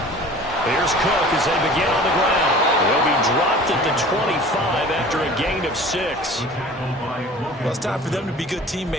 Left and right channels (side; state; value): both; normal; correlation 0.44